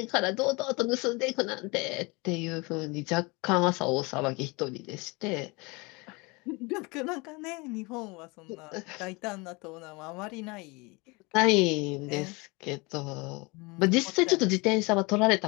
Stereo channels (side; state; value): right; quieter; 26.7 dB